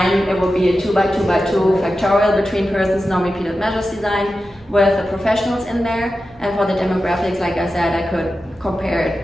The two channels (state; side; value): normal; both; correlation 0.92